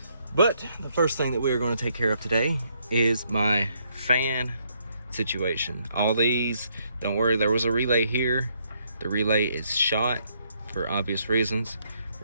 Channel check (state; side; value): inverted; both; correlation -0.72